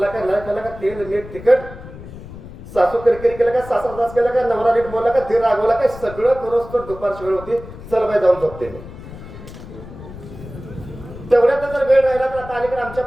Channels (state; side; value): noise; left; rumble, 14 dB below the sound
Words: का नाही खाल्ला का, तेल मीठ तिखट, सासू किरकिरी केलं का, सासरा त्रास केला का, नवरा नीट बोलला का, धीर रागवला का, सगळं करोस तर दुपारची वेळ होती, चल बाई जाऊन झोपते मी. तेवढ्यात जर वेळ राहिला तर आता अलीकडे आमच्या